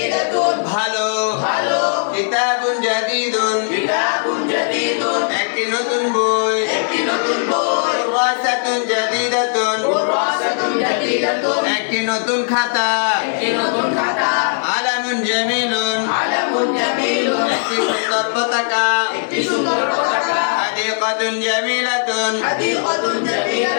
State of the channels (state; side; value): silent; right; digital silence